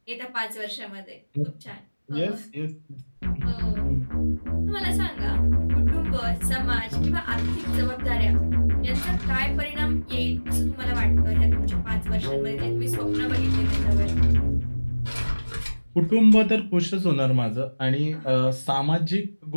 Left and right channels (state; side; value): inverted; both; correlation -1.00